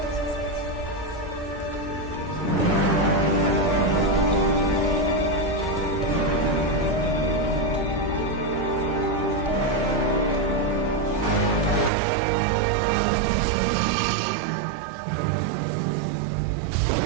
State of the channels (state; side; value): drops out; left; at 11.9 s